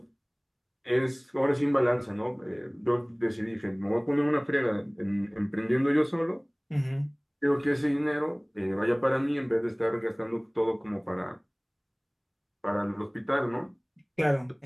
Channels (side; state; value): both; identical; correlation 1.00